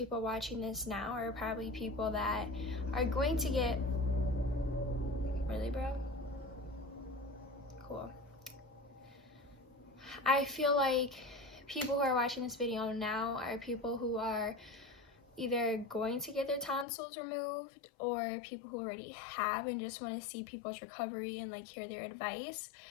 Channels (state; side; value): drops out; right; at 16.9 s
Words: watching this now are probably people that are going to get, really bro? Cool. I feel like people who are watching this video now are people who are either going to get their tonsils removed or people who already have and just want to see people's recovery and like hear their advice.